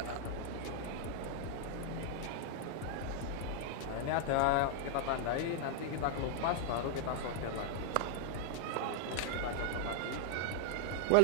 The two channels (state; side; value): different; both; correlation 0.00